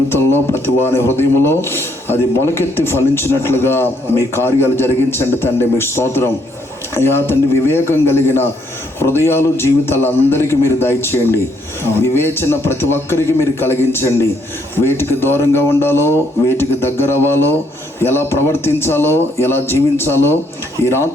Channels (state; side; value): normal; both; correlation 0.70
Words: ప్రతి వాని హృదయంలో అది మొలకెత్తి ఫలించినట్లుగా మీ కార్యాలు జరిగించండి తండ్రి. మీ స్తోత్రం అయ్యా తండ్రి. వివేకం కలిగిన హృదయాలు జీవితాలు అందరికీ మీరు దయచేయండి. వివేచన ప్రతి ఒక్కరికి మీరు కలిగించండి. వేటికి దూరంగా ఉండాలో, వేటికి దగ్గర అవ్వాలో, ఎలా ప్రవర్తించాలో, ఎలా జీవించాలో ఈ